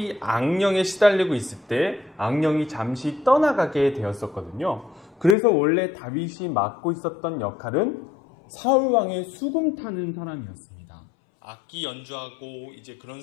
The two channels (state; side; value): drops out; right; at 5.4 s